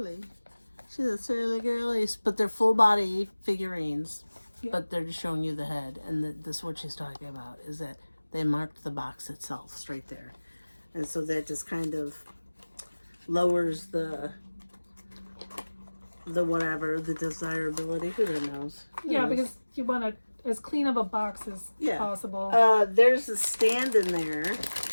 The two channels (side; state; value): both; inverted; correlation -1.00